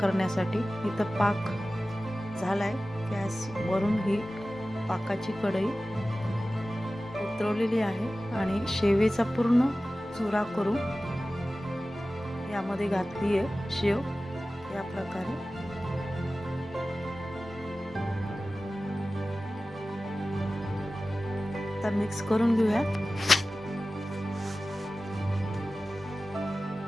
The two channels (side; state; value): both; normal; correlation 0.96